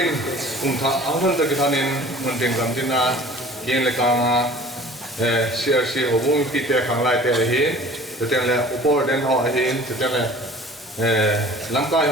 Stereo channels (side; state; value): both; normal; correlation 0.46